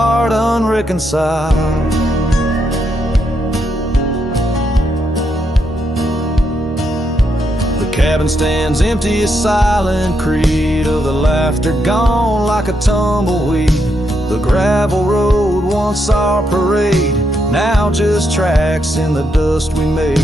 unreconciled. The cabin stands empty, a silent creed of the laughter gone like a tumbleweed. The gravel road, once our parade, now just tracks in the dust we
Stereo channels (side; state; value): both; normal; correlation 0.80